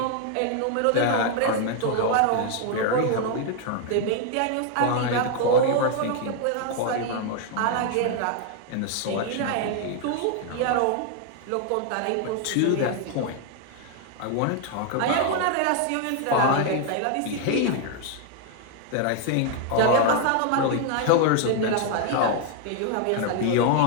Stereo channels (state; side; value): different; both; correlation 0.00